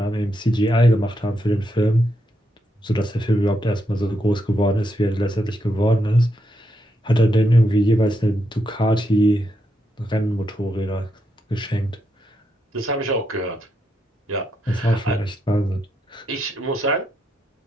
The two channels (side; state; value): both; normal; correlation 0.81